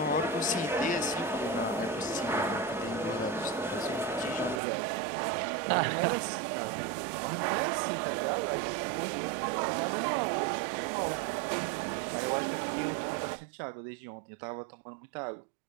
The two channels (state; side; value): drops out; left; at 4.6 s